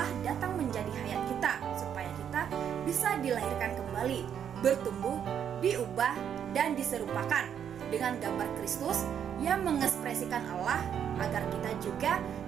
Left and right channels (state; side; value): quieter; left; 8.7 dB